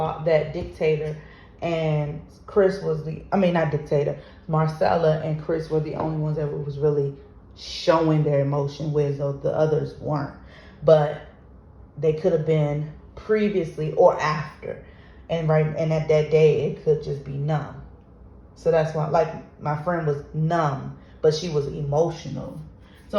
dictator and Chris not dictator, Marcella and Chris were the only ones that was really showing their emotion, whereas the others weren't. But they could have been previously or after, and at that day it could just be numb. So that's why, like, my friend was numb, but she was emotional. So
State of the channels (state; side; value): identical; both; correlation 1.00